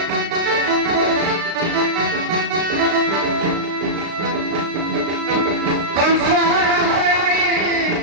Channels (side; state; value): left; late; 35 ms